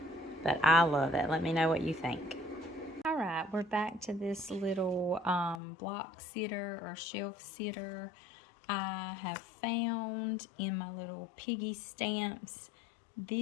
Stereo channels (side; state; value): right; drops out; at 5.6 s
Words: But I love it. Let me know what you think. All right, we're back to this little block sitter or shelf sitter I have found in my little piggy stamps.